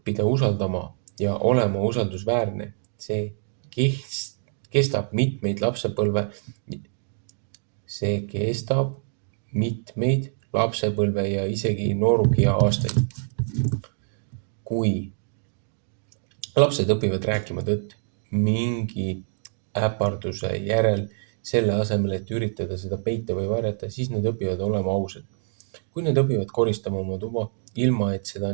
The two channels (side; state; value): left; silent; digital silence